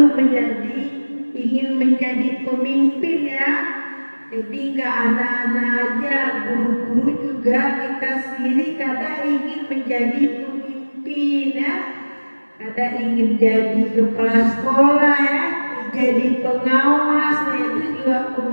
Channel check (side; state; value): both; inverted; correlation -1.00